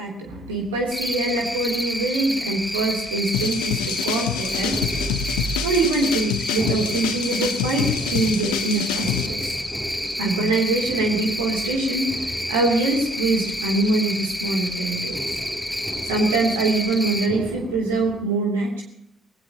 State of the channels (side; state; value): both; normal; correlation 0.57